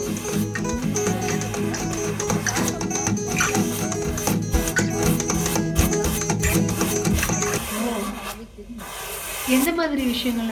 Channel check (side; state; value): both; identical; correlation 1.00